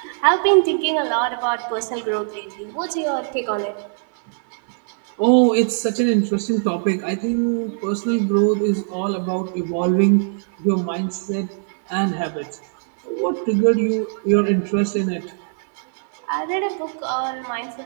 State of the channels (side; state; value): left; silent; 57 dB below the other